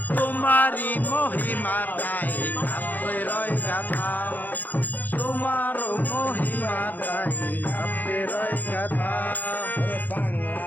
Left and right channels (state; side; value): late; right; 0.084 ms